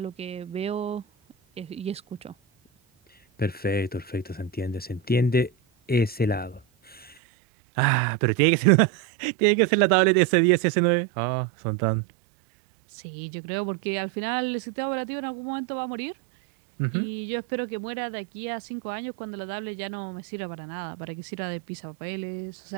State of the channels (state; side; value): drops out; left; at 7.2 s